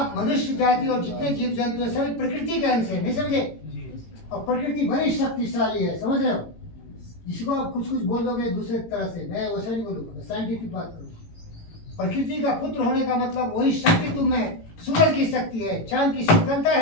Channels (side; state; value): right; late; 18 ms